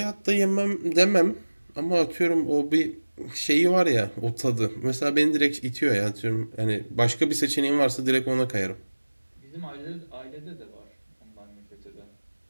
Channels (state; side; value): inverted; both; correlation -1.00